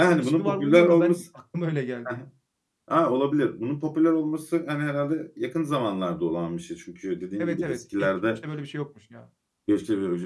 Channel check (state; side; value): identical; both; correlation 1.00